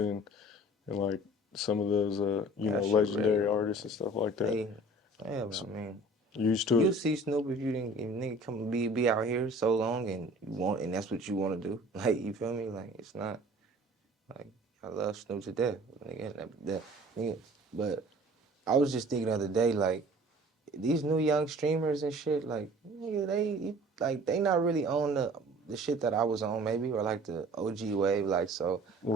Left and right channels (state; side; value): normal; both; correlation 0.47